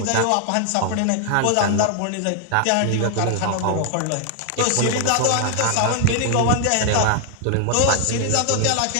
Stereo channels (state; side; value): different; both; correlation 0.00